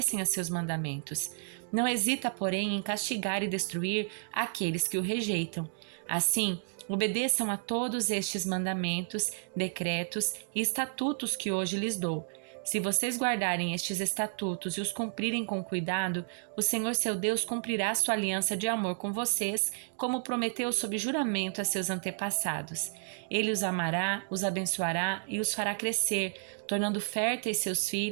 a seus mandamentos. Não hesita, porém, em castigar e destruir aqueles que o rejeitam. Assim, obedeçam a todos estes mandamentos, decretos e estatutos que hoje lhes dou. Se vocês guardarem estes estatutos e os cumprirem com cuidado, o Senhor seu Deus cumprirá sua aliança de amor com vocês, como prometeu sob juramento a seus antepassados. Ele os amará, os abençoará e os fará crescer, tornando férteis seus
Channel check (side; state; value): left; silent; digital silence